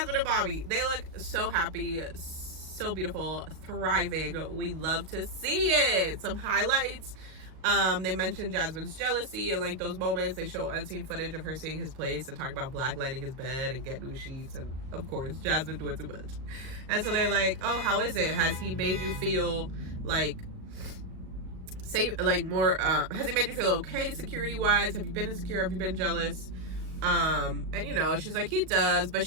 and Bobby. They look so happy, so beautiful, thriving. We love to see it. Some highlights. They mentioned Jasmine's jealousy and like those moments. They show unseen footage of her seeing his place and talk about blacklighting his bed and get new sheets, and of course Jasmine doing too much. And so they're like, oh, how is it? Has he made you feel like safe, like more has he made you feel okay security wise? Have you been insecure? Have you been jealous? And you know, she's like, he does, but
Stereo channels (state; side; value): late; left; 38 ms